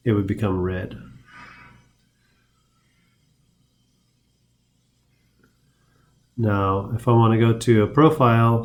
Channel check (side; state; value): both; identical; correlation 1.00